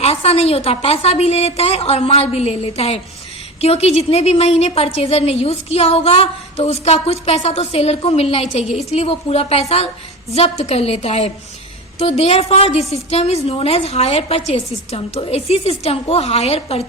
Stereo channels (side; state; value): both; normal; correlation 0.28